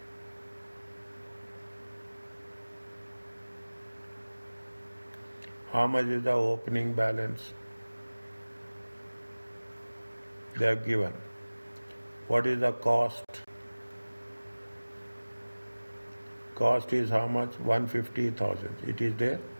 How much is the opening balance? They have given. What is the cost? Cost is how much? 150,000. It is there?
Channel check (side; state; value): both; inverted; correlation -1.00